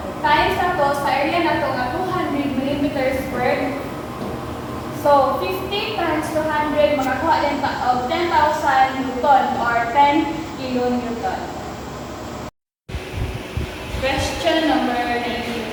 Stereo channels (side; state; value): both; identical; correlation 1.00